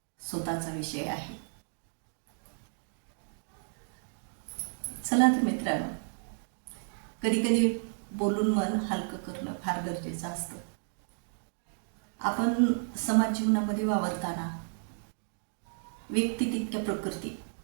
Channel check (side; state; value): left; silent; 56 dB below the other